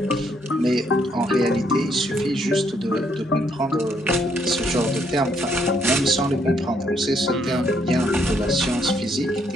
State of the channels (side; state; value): both; normal; correlation 0.72